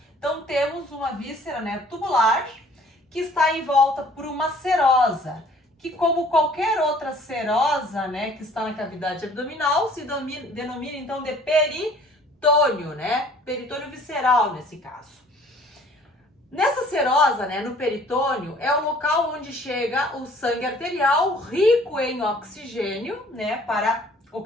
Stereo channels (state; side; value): normal; both; correlation 0.55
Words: então temos uma víscera tubular que está em volta por uma serosa, que como qualquer outra serosa, que está na cavidade abdominal, se denomina então de peritônio, peritônio visceral nesse caso. Nessa serosa, no peritônio, é o local onde chega o sangue arterial rico em oxigênio, para